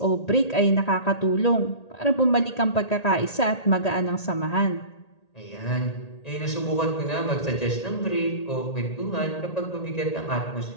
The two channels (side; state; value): right; late; 1.8 ms